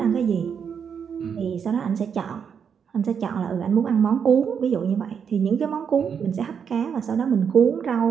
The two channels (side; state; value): left; quieter; 7.1 dB